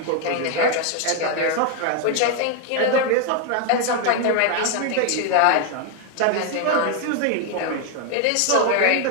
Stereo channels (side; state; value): both; different; correlation 0.01